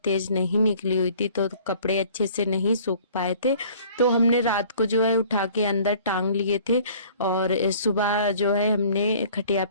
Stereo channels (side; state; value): both; inverted; correlation -0.52